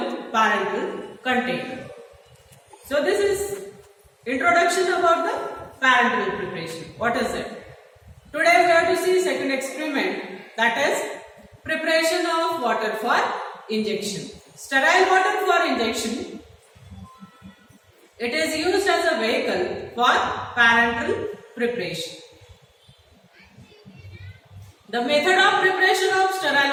parenteral container. So this is introduction about the parenteral preparation. What is it? Today we have to see second experiment, that is preparation of water for injection. Sterile water for injection. It is used as a vehicle for parenteral preparation. The method of preparation of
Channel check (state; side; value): identical; both; correlation 1.00